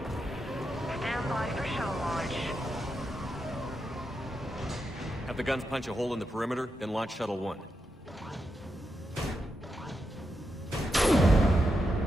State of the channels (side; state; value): both; normal; correlation 0.86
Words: Stand by for shuttle launch. Have the guns punch a hole in the perimeter, then launch Shuttle 1.